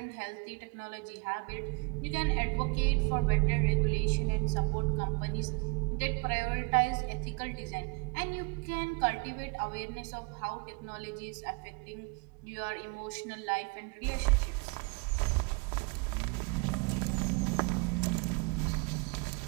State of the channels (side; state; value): left; quieter; 32.6 dB